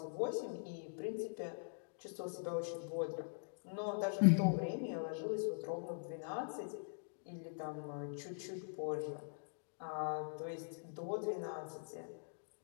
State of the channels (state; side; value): silent; right; digital silence